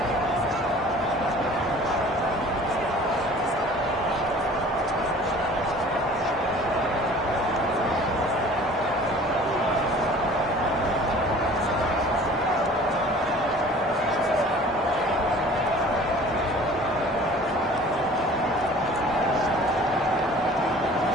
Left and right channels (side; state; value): both; normal; correlation 0.47